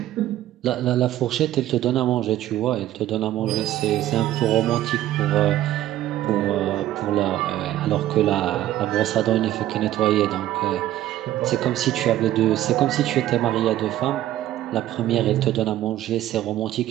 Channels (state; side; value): quieter; left; 13.6 dB